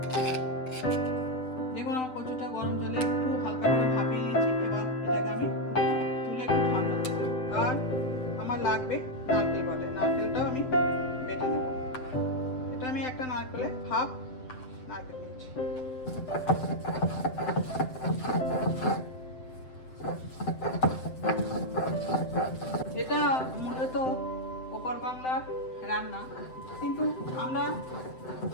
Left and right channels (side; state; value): right; late; 7.8 ms